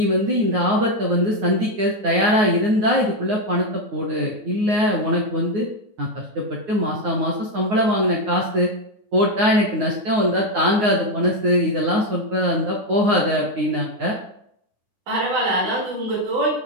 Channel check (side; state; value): left; late; 9.5 ms